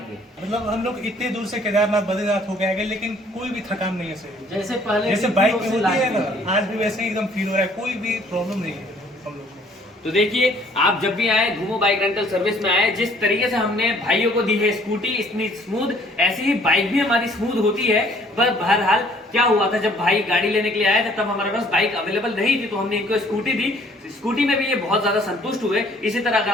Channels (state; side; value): normal; both; correlation 0.59